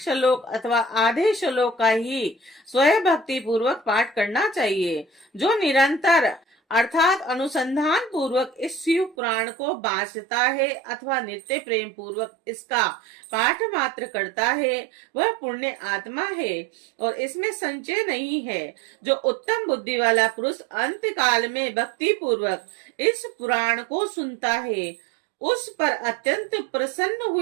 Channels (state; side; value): drops out; left; at 9.2 s